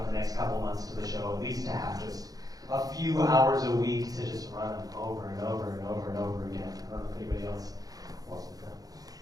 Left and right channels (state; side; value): late; left; 0.18 ms